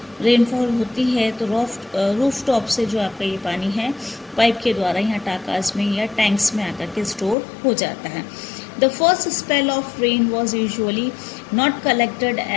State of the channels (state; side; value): drops out; right; at 7.4 s